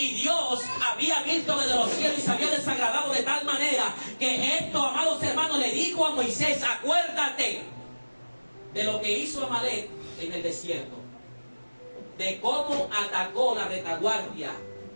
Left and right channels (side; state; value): both; inverted; correlation -1.00